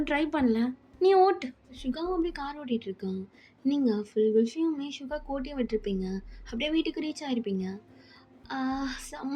ட்ரை பண்ணல, நீ ஓட்டு. சுகாவும் அப்படியே கார் ஓட்டிகிட்டு இருக்கான். நீங்கள் ஃபுல் விஷயமே சுகா கோட்டியும் விட்டுருப்பீங்க, அப்படியே வீட்டுக்கு ரீச் ஆகிருப்பீங்க.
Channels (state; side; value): identical; both; correlation 1.00